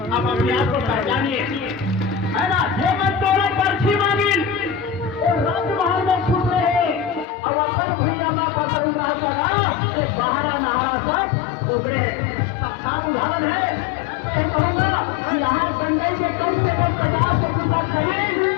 अपने आप को पहचानिए, है ना। पर्ची मांगी और राजमहल में छुप रहे और अपन भैया में पसंद बाहर नहारा सब उभरे सब उदाहरण है। मैं कहूँगा कि यहाँ गंडई के कम से कम 50 से 50 खरीद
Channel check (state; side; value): drops out; right; at 7.2 s